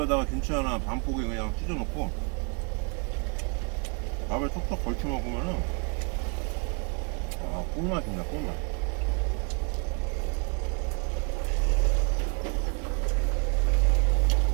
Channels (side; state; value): left; quieter; 35.5 dB